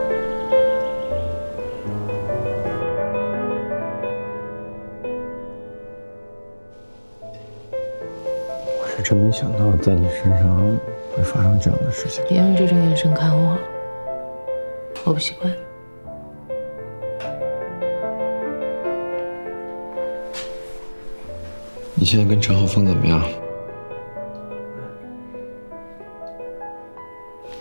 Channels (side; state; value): both; inverted; correlation -1.00